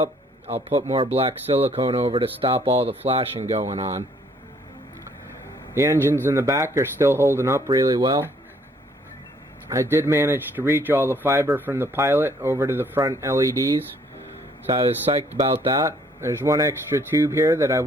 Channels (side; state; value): both; normal; correlation 0.64